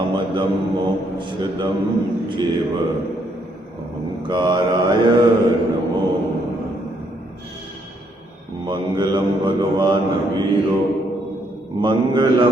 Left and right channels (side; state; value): both; normal; correlation 0.72